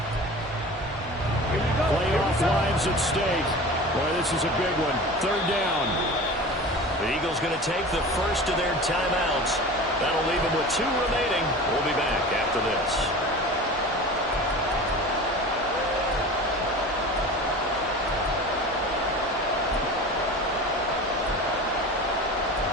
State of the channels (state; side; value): normal; both; correlation 0.36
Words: Playoff lives at stake. Boy, this is a big one. 3rd down. The Eagles going to take the 1st of their timeouts. That'll leave them with 2 remaining. We'll be back after this.